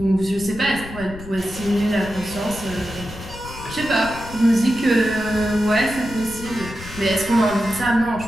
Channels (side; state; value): left; noise; rumble, 13 dB below the sound